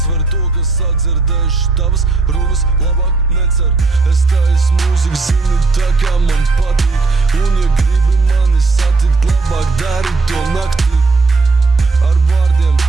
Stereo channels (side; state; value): left; quieter; 3.8 dB